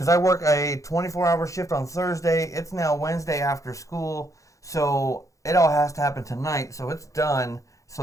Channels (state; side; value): late; right; 0.16 ms